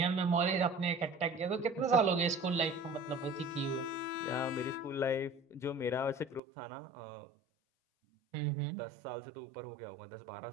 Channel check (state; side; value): drops out; left; at 6.4 s